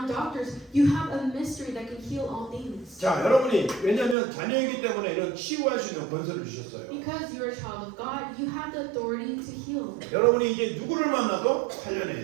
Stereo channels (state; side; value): drops out; left; at 4.2 s